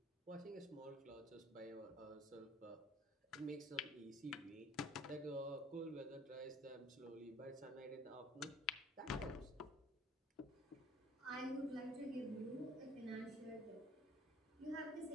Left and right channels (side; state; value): both; normal; correlation 0.54